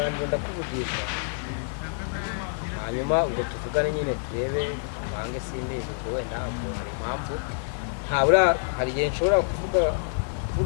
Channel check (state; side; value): silent; right; 60 dB below the other